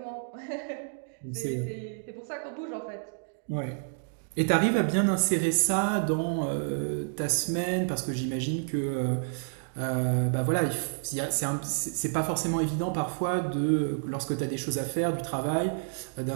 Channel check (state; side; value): silent; left; digital silence